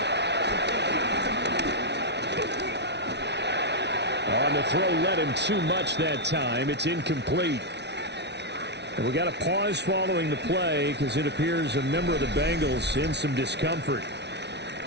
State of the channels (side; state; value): left; late; 0.50 ms